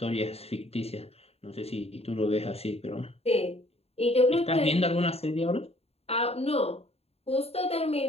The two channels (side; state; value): right; late; 0.29 ms